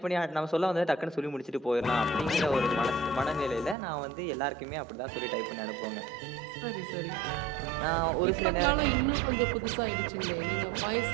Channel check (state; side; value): drops out; left; at 3.8 s